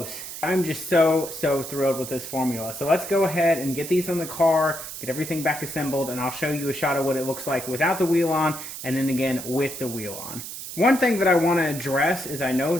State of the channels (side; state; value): right; noise; hiss, 9 dB below the sound